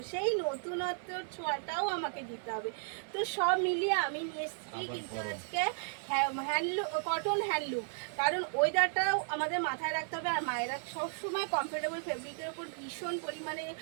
সেই নতুনত্বর ছোঁয়াটাও আমাকে দিতে হবে। তো সব মিলিয়ে আমি নিয়ে এসেছি কিন্তু আজকে হ্যান্ডলুম, কটন হ্যান্ডলুম, কারণ ওয়েদারটাও আমাদের মাথায় রাখতে হবে। আর মায়েরা সবসময় কমফোর্টেবল ফেব্রিকের উপর ভীষণ পরিমাণে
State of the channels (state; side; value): silent; left; digital silence